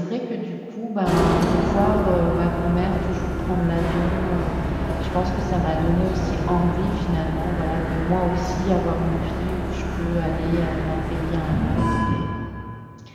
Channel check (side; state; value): both; identical; correlation 1.00